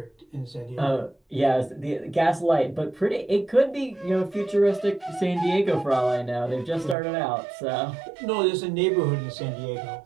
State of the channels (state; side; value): drops out; left; at 7.0 s